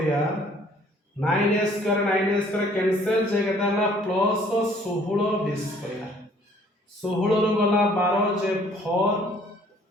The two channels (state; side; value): normal; both; correlation 0.58